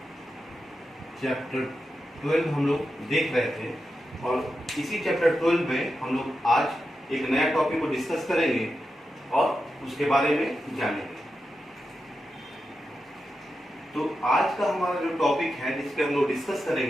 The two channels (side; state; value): both; normal; correlation 0.89